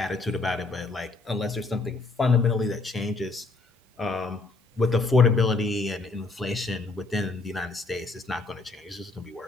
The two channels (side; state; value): right; quieter; 3.6 dB